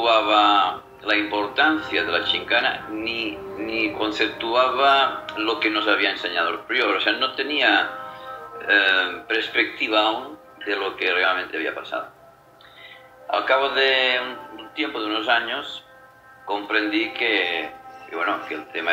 la importancia de la Chincana, ni conceptuaba lo que nos había enseñado el prior. O sea, no tenía perspectiva aún de lo que realmente había pasado. Al cabo de un tiempo, de unos años, comprendí que el tema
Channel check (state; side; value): identical; both; correlation 1.00